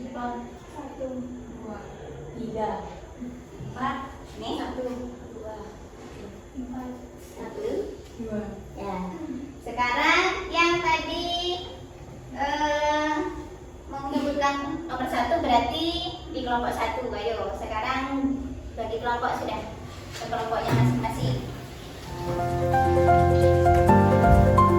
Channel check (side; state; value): both; identical; correlation 1.00